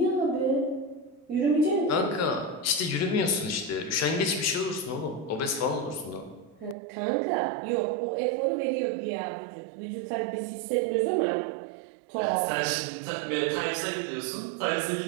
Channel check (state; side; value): drops out; left; at 6.8 s